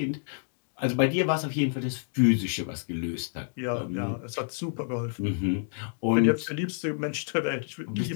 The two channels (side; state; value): right; silent; digital silence